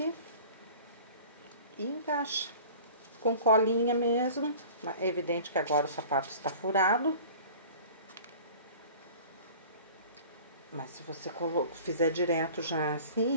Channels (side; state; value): both; inverted; correlation -0.43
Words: e encaixa. Com colinha mesmo. É evidente que agora o sapato está furado. Mas se você fizer direto já